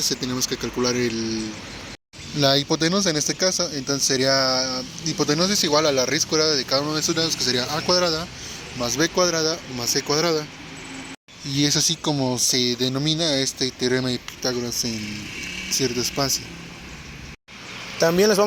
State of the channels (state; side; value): identical; both; correlation 1.00